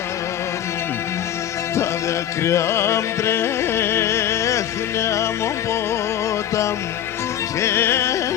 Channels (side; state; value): right; quieter; 10.7 dB